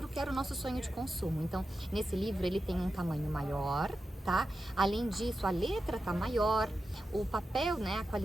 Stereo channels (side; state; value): both; normal; correlation 0.91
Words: que era o nosso sonho de consumo. Então, nesse livro, ele tem um tamanho maior, tá? Além disso, a letra tá maior, o papel, a